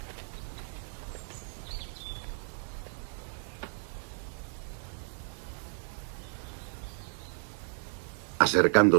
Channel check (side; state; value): left; silent; 56 dB below the other